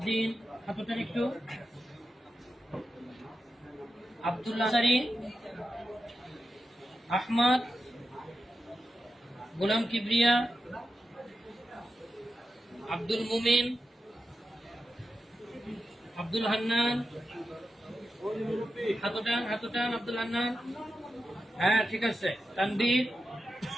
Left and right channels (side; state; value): both; normal; correlation 0.90